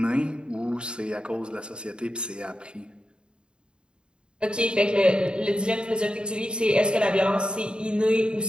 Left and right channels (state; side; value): late; left; 0.052 ms